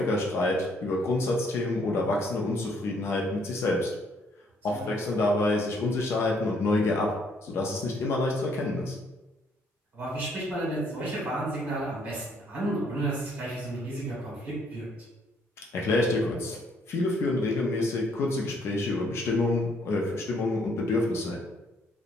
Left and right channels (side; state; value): both; normal; correlation 0.67